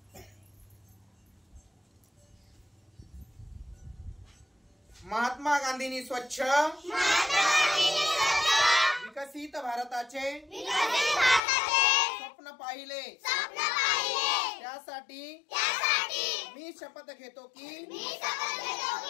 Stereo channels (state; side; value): drops out; right; at 11.4 s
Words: महात्मा गांधींनी स्वच्छ विकसित भारताचे स्वप्न पाहिले, त्यासाठी मी शपथ घेतो की